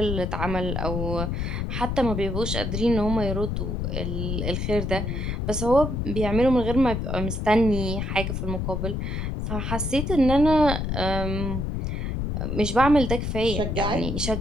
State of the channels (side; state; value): left; noise; rumble, 2 dB below the sound